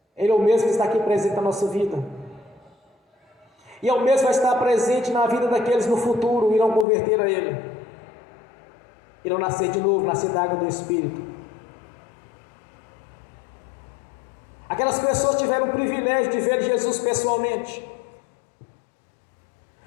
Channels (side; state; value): right; drops out; at 6.9 s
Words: Ele é o mesmo que está aqui presente na nossa vida, e é o mesmo que vai estar presente na vida daqueles no futuro irão converter a Ele, irão nascer de novo, nascer da água do Espírito. Aquelas pessoas tiveram o privilégio de ver Jesus pessoalmente,